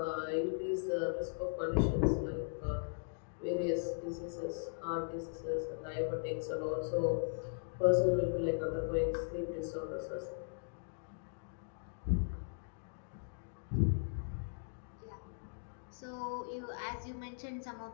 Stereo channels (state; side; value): silent; right; digital silence